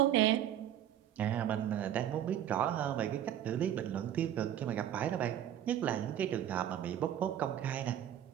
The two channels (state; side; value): quieter; left; 10.9 dB